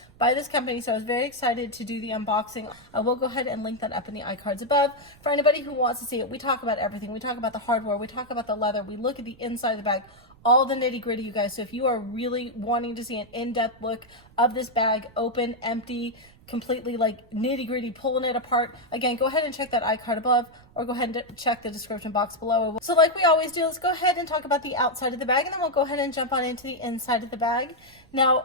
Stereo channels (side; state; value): right; noise; rumble, 26 dB below the sound